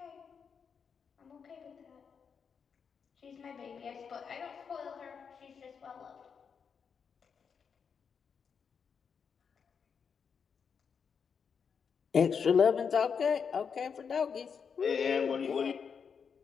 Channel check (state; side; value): quieter; right; 6.4 dB